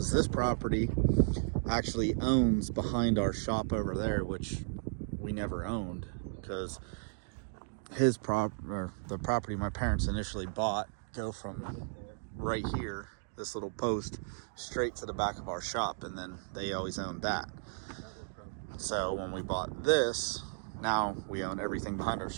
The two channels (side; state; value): left; silent; digital silence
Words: this property actually owns behind our shop over there, which we never owned, because the property my parents initially bought go from right here, this little post, straight to the back of our shop, and then they always owned that. So when we bought this, now we own everything behind our